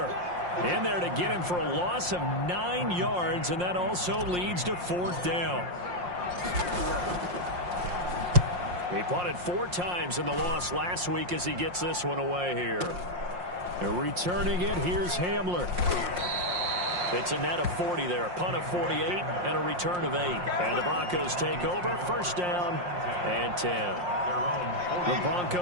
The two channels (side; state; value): left; late; 5.6 ms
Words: in there to get him for a loss of 9 yards, and that also leads to 4th down. He punted 4 times in the loss last week as he gets this one away here. And returning it, here's Hamler. It's a net of 40 there, a punt of 48 and a return of 8. And the Broncos take over, 1st down and 10. The